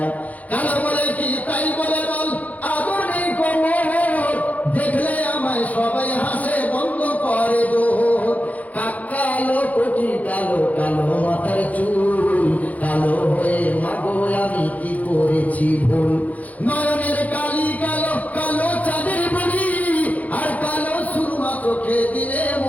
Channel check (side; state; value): right; late; 0.075 ms